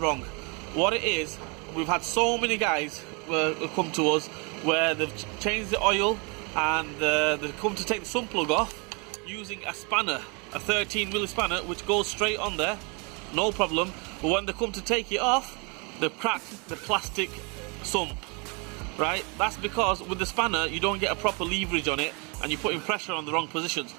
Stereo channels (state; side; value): quieter; left; 32.2 dB